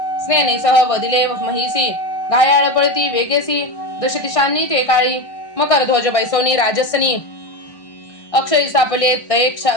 स्नेनीसह वदिले महिसी घायाळ पळती वेगेसी दशदिशांनी ते काळी मकर ध्वज बैसवनी राजसनी अक्षरी सापले तये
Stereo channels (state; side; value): late; right; 1.6 ms